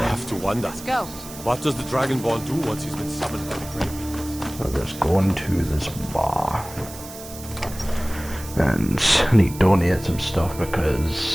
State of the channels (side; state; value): right; noise; hiss, 15 dB below the sound